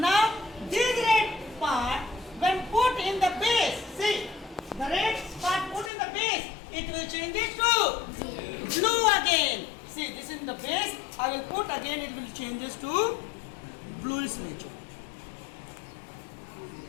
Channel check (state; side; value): drops out; right; at 5.9 s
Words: this red part, when put in the base, see, the red part put in the base, it will change it to blue again. See, this is in the base. I will put again, it will changes to bluish nature.